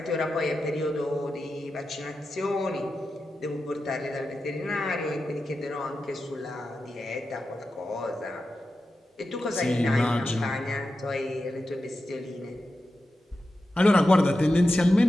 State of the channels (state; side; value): normal; both; correlation 0.91